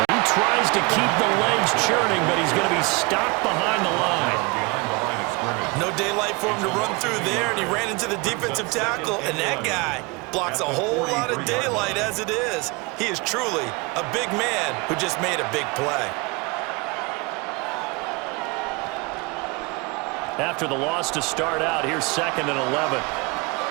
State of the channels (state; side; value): quieter; left; 27.4 dB